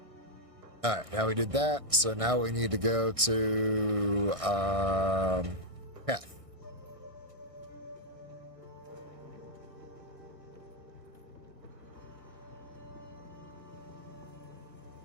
Alright, now we did that. So now we need to go to Keth.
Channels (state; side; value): late; left; 1.6 ms